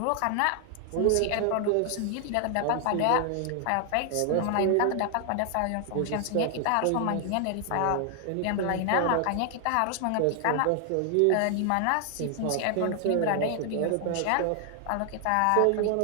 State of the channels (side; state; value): both; different; correlation 0.00